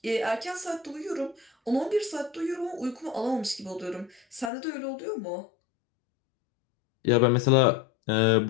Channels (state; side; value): drops out; right; at 4.5 s